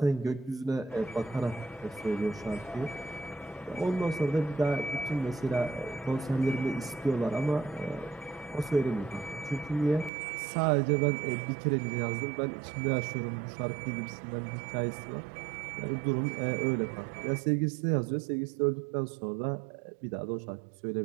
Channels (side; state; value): left; drops out; at 10.1 s